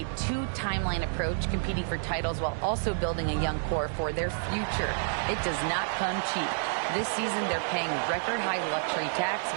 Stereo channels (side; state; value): left; silent; digital silence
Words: two-timeline approach, competing for titles while also building a young core for their future. It does not come cheap. This season, they're paying record-high luxury tax